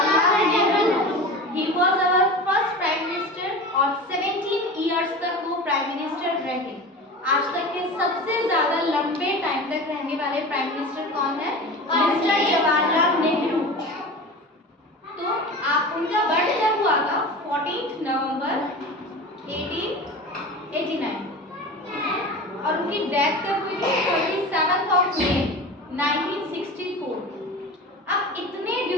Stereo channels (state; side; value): normal; both; correlation 0.32